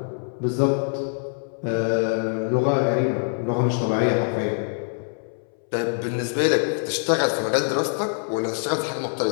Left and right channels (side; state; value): right; silent; 62 dB below the other